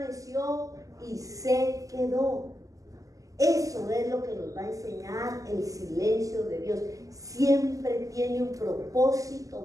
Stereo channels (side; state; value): left; late; 0.17 ms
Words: y se quedó. Eso es lo que nos va a enseñar el silencio de Dios. Siempre tiene un